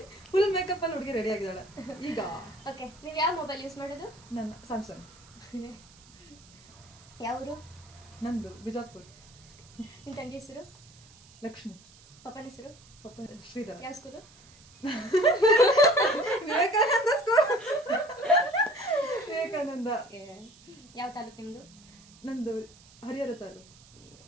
ಫುಲ್ ಮೇಕಪ್ ಅಲ್ಲಿ ಹುಡುಗಿ ರೆಡಿ ಆಗಿದ್ದಾಳೆ ಈಗ. ಓಕೆ, ನೀವು ಯಾವ ಮೊಬೈಲ್ ಯೂಸ್ ಮಾಡೋದು? ನನ್ನ ಸ್ಯಾಮ್ಸಂಗ್. ಯಾವ ಊರು? ನಂದು ಬಿಜಾಪುರ್. ನಿಮ್ಮ ತಂಗಿ ಹೆಸರು? ಲಕ್ಷ್ಮಿ. ಪಪ್ಪನ ಹೆಸರು? ಪಪ್ಪ ಶ್ರೀಧರ್. ಯಾವ ಸ್ಕೂಲು? ವಿವೇಕಾನಂದ ಸ್ಕೂಲ್. ವಿವೇಕಾನಂದ. ಯಾವ ತಾಲೂಕು ನಿಮ್ಮದು? ನಂದು ಹರಿಹರ ತಾಲೂಕು.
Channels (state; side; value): noise; right; hiss, 24 dB below the sound